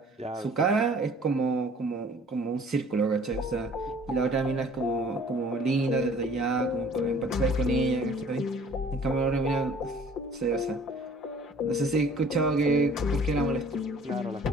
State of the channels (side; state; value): both; normal; correlation 0.52